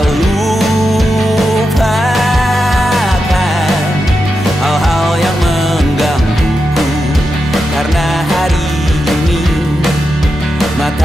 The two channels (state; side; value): normal; both; correlation 0.88